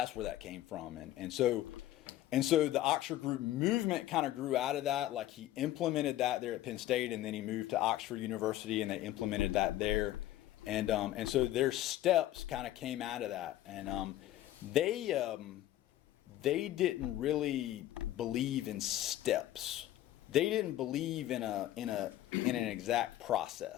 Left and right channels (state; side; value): quieter; right; 14.0 dB